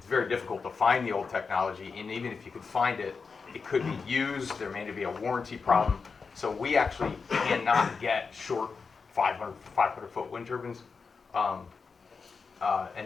very difficult to find the old technology, and even if you could find it, it could be used, there may be a warranty problem. So we actually cannot get short 500-foot wind turbines.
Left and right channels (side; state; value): right; quieter; 5.0 dB